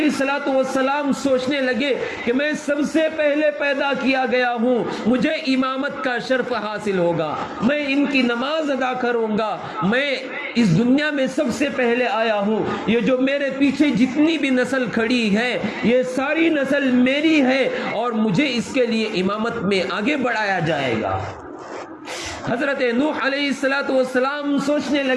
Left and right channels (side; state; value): both; identical; correlation 1.00